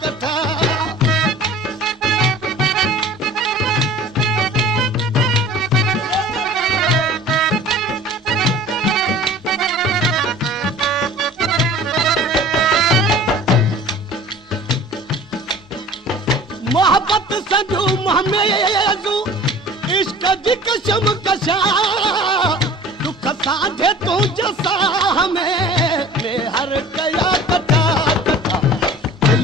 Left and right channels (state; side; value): normal; both; correlation 0.44